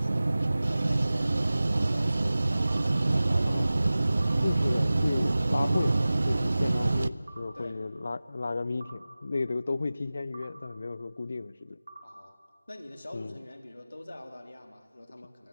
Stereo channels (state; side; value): inverted; both; correlation -0.97